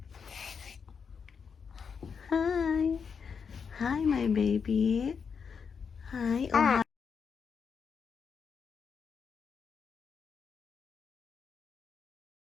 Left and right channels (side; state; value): right; quieter; 6.2 dB